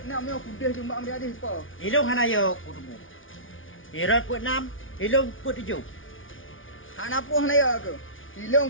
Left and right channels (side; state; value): right; late; 0.57 ms